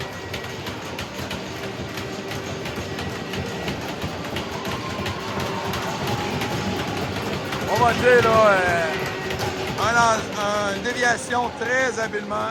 On va dire là, une déviation très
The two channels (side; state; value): both; identical; correlation 1.00